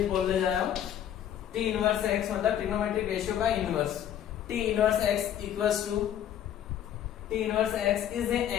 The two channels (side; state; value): right; quieter; 10.4 dB